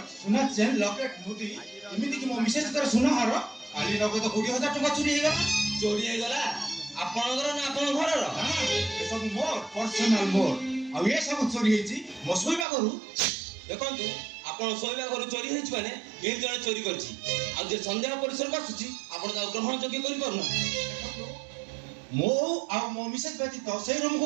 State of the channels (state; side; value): drops out; left; at 12.7 s